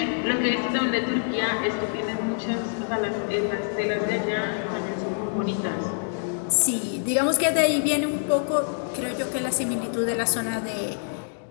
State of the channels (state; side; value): silent; right; 61 dB below the other